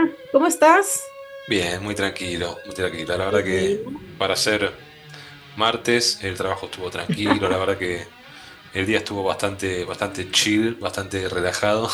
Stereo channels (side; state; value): both; identical; correlation 1.00